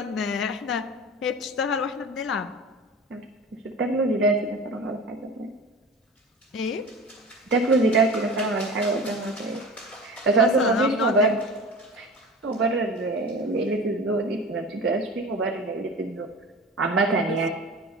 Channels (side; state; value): both; normal; correlation 0.35